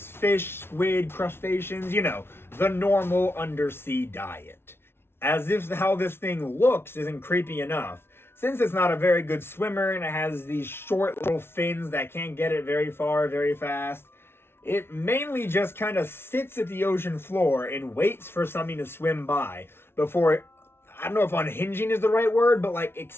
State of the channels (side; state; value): right; late; 0.12 ms